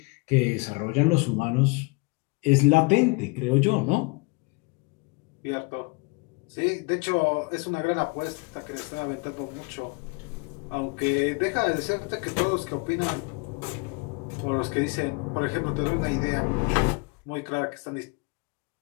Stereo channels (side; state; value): right; quieter; 29.2 dB